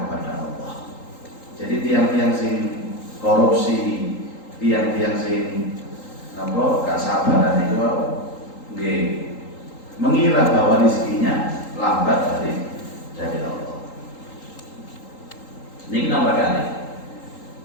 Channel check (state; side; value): late; right; 3.8 ms